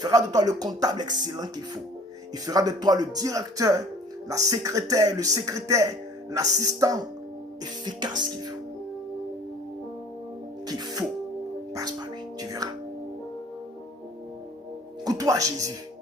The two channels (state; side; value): normal; both; correlation 0.50